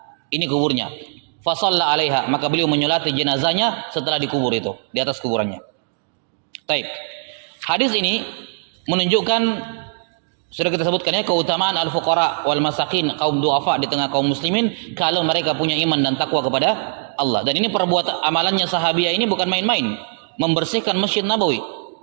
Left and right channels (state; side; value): silent; left; digital silence